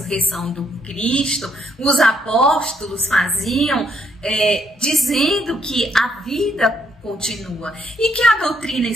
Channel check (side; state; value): both; normal; correlation 0.72